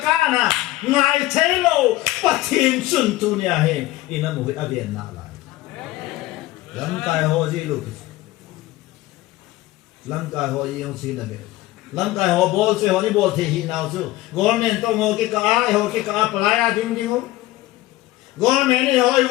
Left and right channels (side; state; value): right; quieter; 17.2 dB